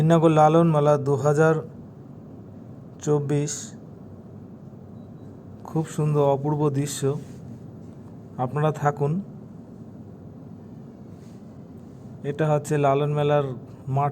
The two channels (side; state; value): both; identical; correlation 1.00